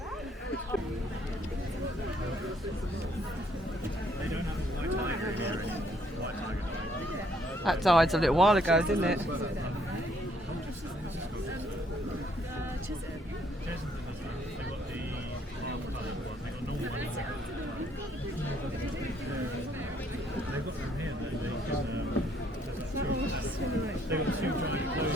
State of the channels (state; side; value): normal; both; correlation 0.67